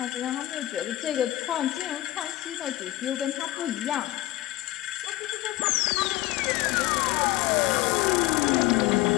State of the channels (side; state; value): right; quieter; 16.4 dB